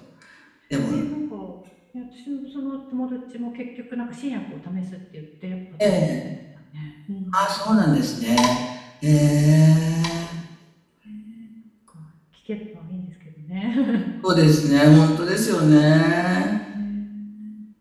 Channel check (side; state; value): both; identical; correlation 1.00